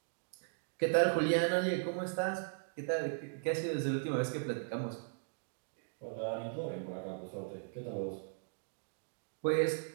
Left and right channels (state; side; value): silent; left; digital silence